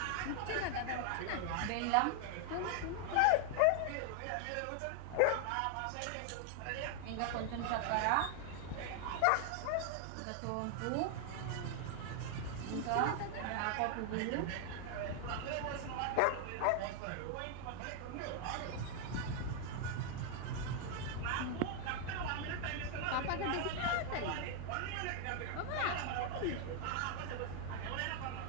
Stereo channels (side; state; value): both; different; correlation 0.00